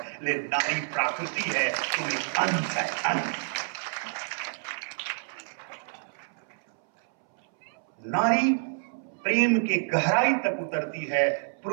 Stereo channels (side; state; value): left; silent; 59 dB below the other